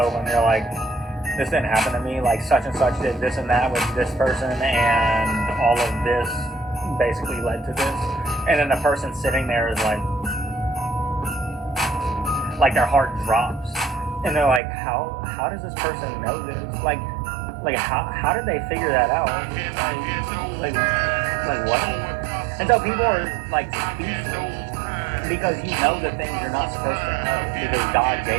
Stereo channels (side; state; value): left; drops out; at 14.6 s